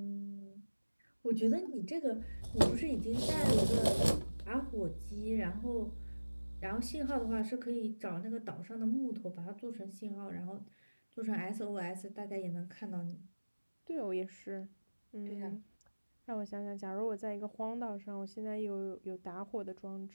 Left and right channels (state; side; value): inverted; both; correlation -1.00